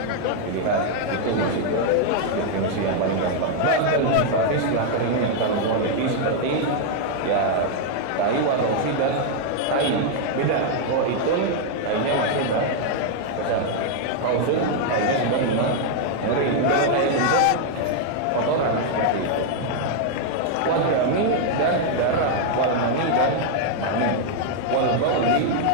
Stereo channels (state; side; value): different; both; correlation 0.00